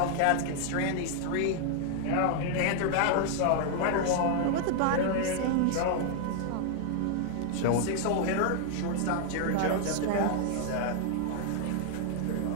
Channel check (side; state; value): both; different; correlation 0.00